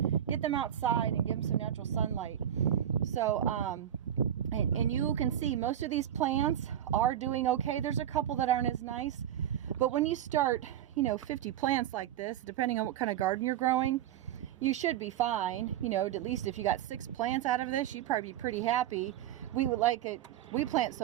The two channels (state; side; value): quieter; left; 10.7 dB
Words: get them outside and give them some natural sunlight. So, and you can see most of these plants are doing okay. There's a couple that aren't as nice, but when you start, 50 plants like this, depending on what kind of garden you're growing, you should be fine. At least if you got 6 plants out of this, you'd probably be pretty happy. We would like it. We plant